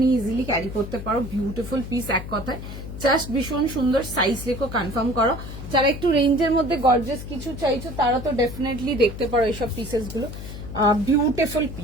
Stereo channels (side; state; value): left; noise; hum, 10 dB below the sound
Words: নিয়ে ইজিলি ক্যারি করতে পারো। বিউটিফুল পিস এক কথায়, জাস্ট ভীষণ সুন্দর। সাইজ লিখো, কনফার্ম করো। যারা একটু রেঞ্জের মধ্যে গর্জিয়াস কিছু চাইছো তারা তো ডেফিনেটলি দেখতে পারো এইসব পিসেস গুলো। বিউটিফুল